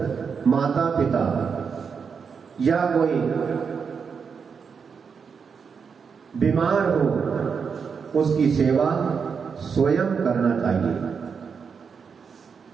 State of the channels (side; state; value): left; quieter; 6.1 dB